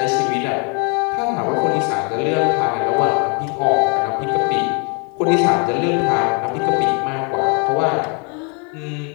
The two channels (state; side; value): quieter; right; 35.7 dB